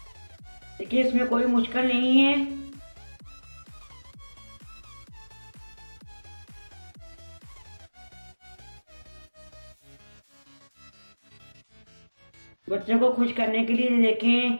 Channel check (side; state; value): both; inverted; correlation -1.00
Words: देखिए इसमें कोई मुश्किल नहीं है। बच्चों को खुश करने के लिए